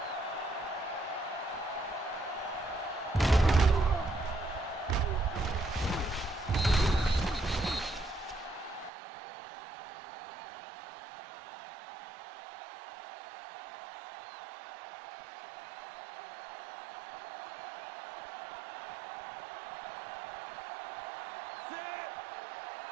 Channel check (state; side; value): drops out; left; at 8.9 s